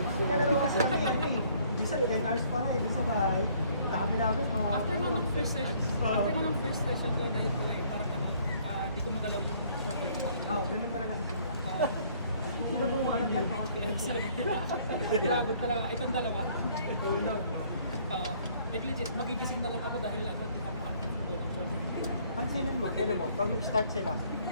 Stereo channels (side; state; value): both; inverted; correlation -0.61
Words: yun. Kalaro kasi kami ano eh. Minsan 10 hours pa eh, dun sa bahay. Dami namin mga... After mo ng first session ko, dahil ko eh, parang ano, di ko magalaw yung shoulder ko. Ganun talaga sa sila. Sinubukan lang yan. Grabe talaga, itong dalawa. Like legit, magigising na lang ako dahil ano, di pa ako ng shoulder. Pansinin mo, kailan mo, pag mag-start sila,